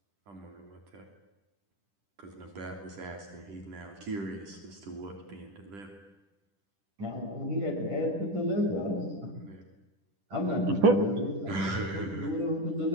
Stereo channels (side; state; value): left; late; 10 ms